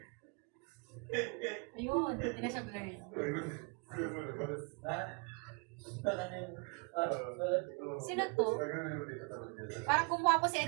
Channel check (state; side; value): quieter; left; 32.7 dB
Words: Ayun, hindi na siya blurred. Sino to? Parang gumawa po si